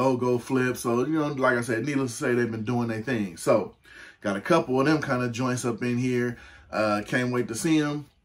flips. So, you know, like I said, needless to say, they've been doing their thing. So, got a couple of them kind of joints up in here. Can't wait to see them.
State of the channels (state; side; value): identical; both; correlation 1.00